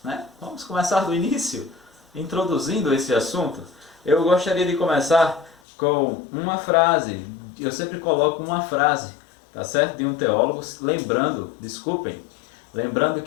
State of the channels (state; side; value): drops out; right; at 5.6 s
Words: né? Vamos começar do início, introduzindo esse assunto. Eu gostaria de começar com uma frase. Eu sempre coloco uma frase, tá certo? De um teólogo, lembrando